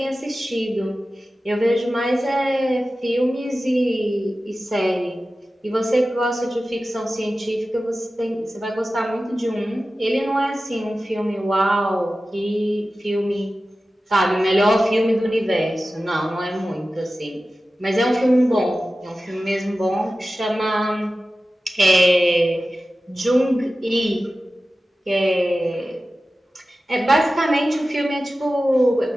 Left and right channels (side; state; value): both; normal; correlation 0.95